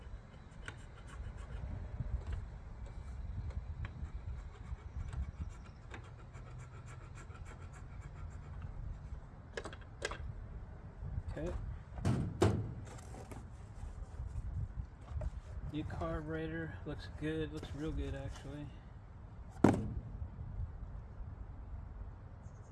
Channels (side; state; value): both; identical; correlation 1.00